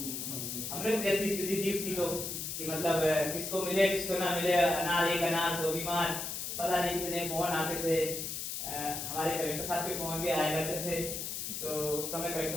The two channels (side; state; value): left; noise; hiss, 4 dB below the sound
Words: अमृत जैसी स्थिति थी उसकी, तो कि मतलब किसको मिले किसको ना मिले, अनार एक अनार सो बीमार, पता नहीं कितने फोन आते थे। हमारे कलेक्टर साहब के फोन भी आया करते थे। तो उस समय